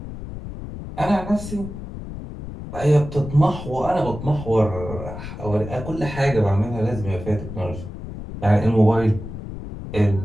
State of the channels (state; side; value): noise; left; rumble, 10 dB below the sound